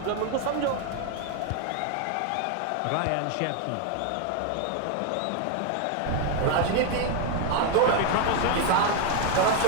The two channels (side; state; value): both; different; correlation 0.01